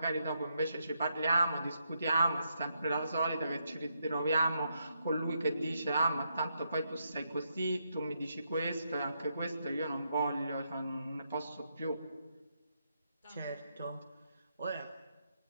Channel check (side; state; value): both; inverted; correlation -0.80